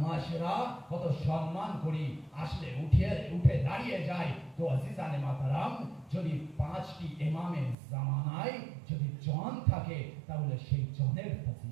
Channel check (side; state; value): left; drops out; at 7.8 s